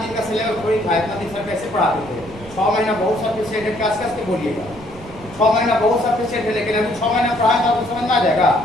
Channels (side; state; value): right; noise; rumble, 18 dB below the sound